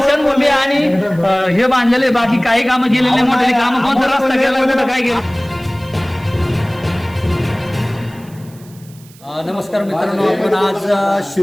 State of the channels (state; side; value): noise; right; hiss, 25 dB below the sound